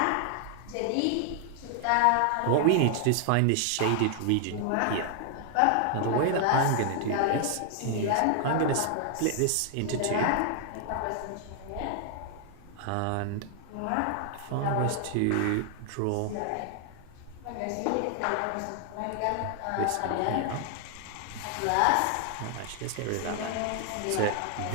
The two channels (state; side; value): different; both; correlation 0.00